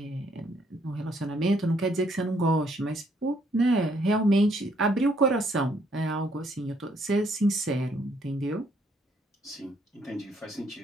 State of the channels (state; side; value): normal; both; correlation 0.68